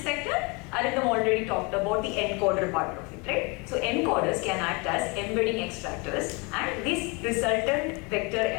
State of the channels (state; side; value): quieter; right; 29.5 dB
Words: vector? Arindam already talked about the encoder part of it, right? So encoders can act as embedding extractors, and these resultant vector